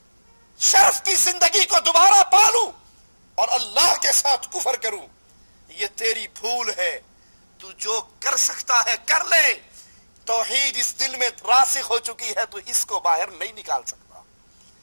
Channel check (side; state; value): both; inverted; correlation -1.00